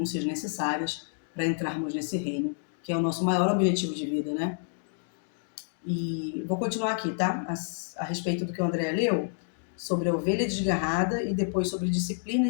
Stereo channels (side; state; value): right; silent; digital silence